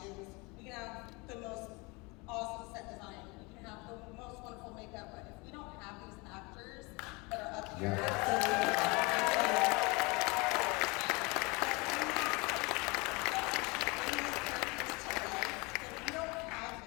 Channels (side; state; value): right; quieter; 27.0 dB